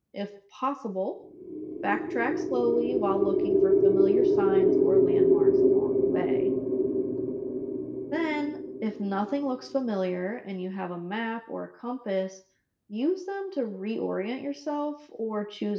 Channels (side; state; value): both; identical; correlation 1.00